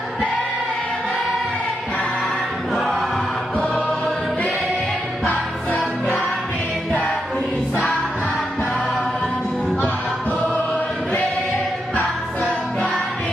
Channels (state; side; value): normal; both; correlation 0.84